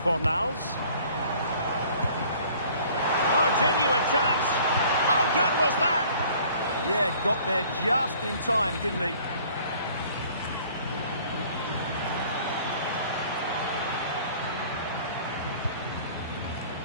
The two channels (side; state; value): both; inverted; correlation -0.53